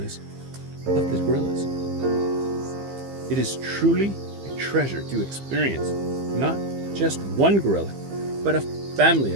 of the gorillas. It is truly a treasure to experience not just one gorilla, but a family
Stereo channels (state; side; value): late; left; 15 ms